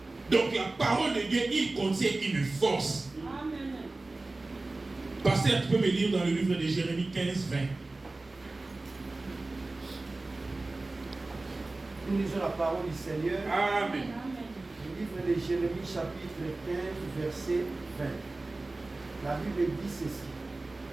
Donc la parole de Dieu, il contient une force. Amen. Pasteur, tu peux me lire dans le livre de Jérémie 15, 20. Nous lisons la parole du Seigneur. Amen. Le livre de Jérémie, chapitre 15, verset 20. La Bible dit ceci.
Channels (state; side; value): quieter; left; 3.1 dB